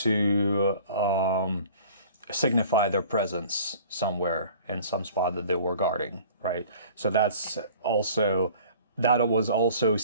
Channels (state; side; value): inverted; both; correlation -0.47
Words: signify their presence somewhere in some spot that they were guarding, right? So that was also